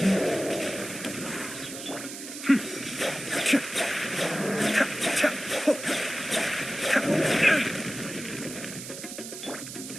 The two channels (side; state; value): right; noise; hiss, 10 dB below the sound